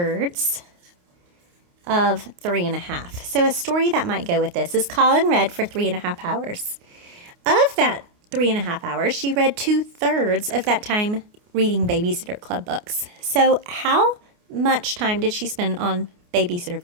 of 3 1/2. So a story that might go with this is Colin read for 3 1/2 hours. Of that 3 1/2 hours, she read 2/3 of that time reading Babysitter Club books. So how much time did she spend on Babysitter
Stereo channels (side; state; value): left; late; 29 ms